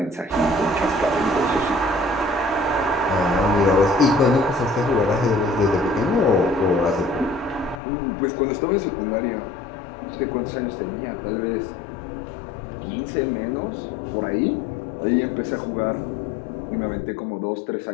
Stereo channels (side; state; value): right; drops out; at 7.8 s